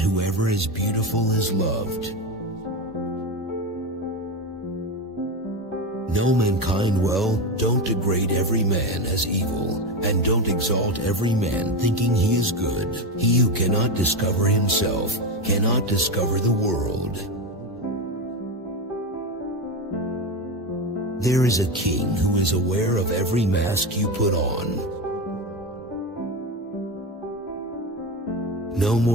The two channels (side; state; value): both; normal; correlation 0.17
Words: is beautiful is loved. Know mankind well, don't degrade every man as evil, and don't exalt every man thinking he is good. He who cannot discover himself cannot discover the world. There is a king who is aware of every mask you put on. No